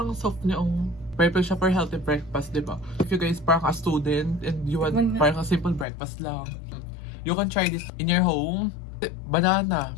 soft niya yung... Perfect siya for healthy breakfast, di ba? If you guys parang a student and you want parang a simple breakfast lang, you can try this in your home. Banana.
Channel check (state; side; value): drops out; right; at 5.9 s